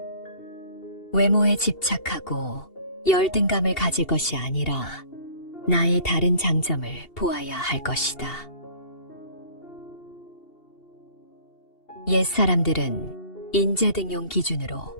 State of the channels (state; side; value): late; right; 2.7 ms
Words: 외모에 집착하고 열등감을 가질 것이 아니라 나의 다른 장점을 보아야 할 것이다. 옛사람들은 인재등용 기준으로